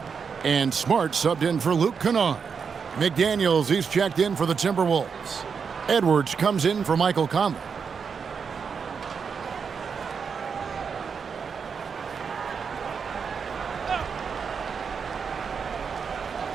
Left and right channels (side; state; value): left; quieter; 6.1 dB